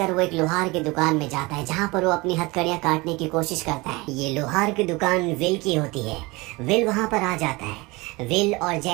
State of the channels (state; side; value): quieter; left; 23.8 dB